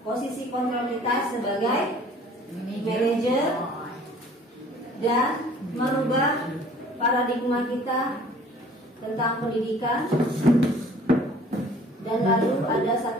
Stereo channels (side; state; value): both; normal; correlation 0.52